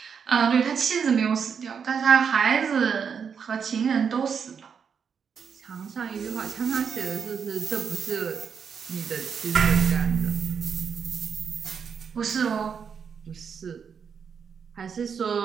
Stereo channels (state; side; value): quieter; left; 6.6 dB